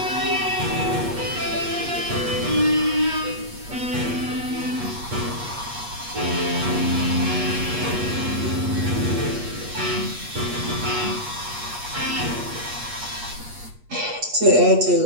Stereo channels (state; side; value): late; left; 8.3 ms